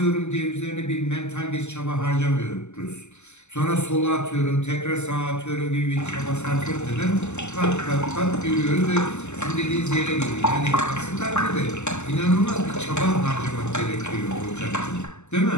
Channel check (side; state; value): right; late; 0.83 ms